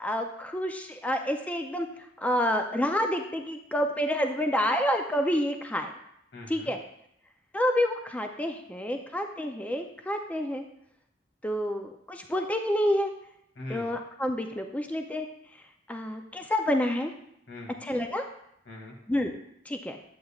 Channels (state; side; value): normal; both; correlation 0.74